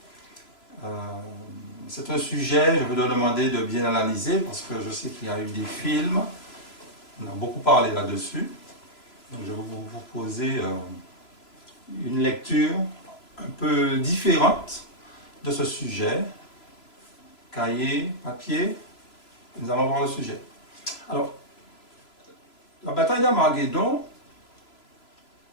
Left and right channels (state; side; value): late; right; 3.0 ms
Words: C'est un sujet, je vais te demander de bien analyser, parce que je sais qu'il y a eu des films, on a beaucoup parlé là-dessus. Donc je vais vous proposer une lecture un peu différente de ce sujet. Cahier, papier, nous allons voir le sujet. Alors, la bataille d'Armageddon,